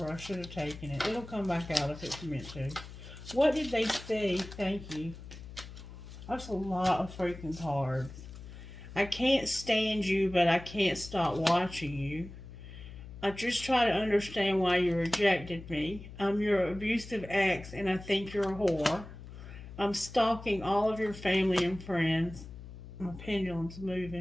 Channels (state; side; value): noise; left; hum, 14 dB below the sound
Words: I should have taken it. It'll come back out if it's meant to. What did they see? Thank you. That's a lot of freaking cards. I can't stand you, but I can't stop watching you. I just try to understand why you rejected me. I'm your abusive ex, and I think you're a whore. I'm stalking all of your family and friends. My pendulum's